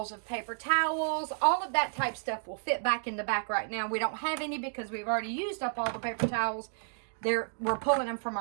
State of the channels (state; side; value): silent; left; digital silence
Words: of paper towels. All of that type stuff will fit back in the back right now. We don't have any because we've already used up all the paper towels. We're pulling them from